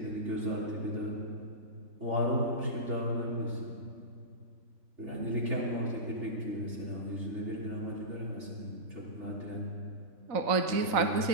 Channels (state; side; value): late; left; 3.9 ms